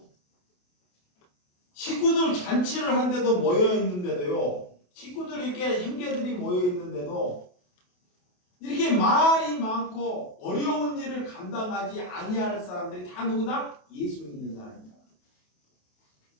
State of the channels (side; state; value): right; late; 28 ms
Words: 식구들 잔치를 한데도 모여있는데도요. 식구들이 이렇게 형제들이 모여있는데도 이렇게 말이 많고 어려운 일을 감당하지 아니할 사람들이 다 누구다? 예수 믿는 사람이다.